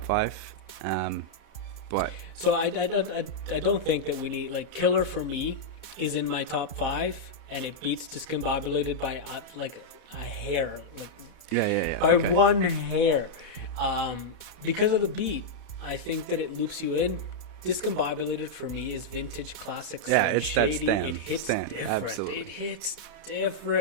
5. But so I don't think that we need like Killer for me is in my top 5 and it beats Discombobulated by like a hair, like by okay. one hair, because of the beat. I think that it loops you in. Discombobulated for me is vintage classic Slim Shady. It hits different. Absolutely. It hits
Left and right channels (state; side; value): late; right; 4.1 ms